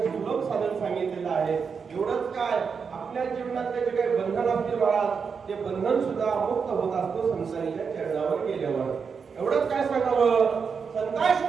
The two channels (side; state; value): left; quieter; 5.9 dB